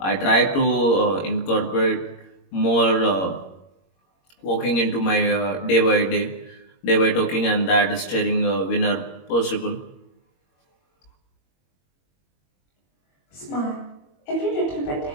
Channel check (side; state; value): right; late; 21 ms